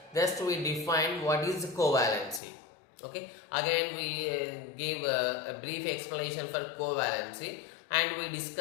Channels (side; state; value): right; drops out; at 2.4 s